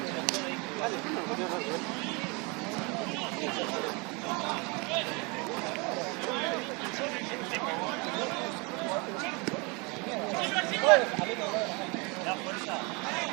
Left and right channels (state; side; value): quieter; left; 29.4 dB